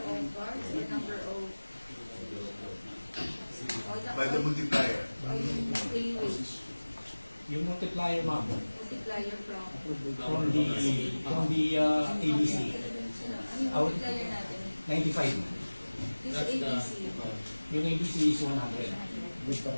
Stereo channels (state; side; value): inverted; both; correlation -1.00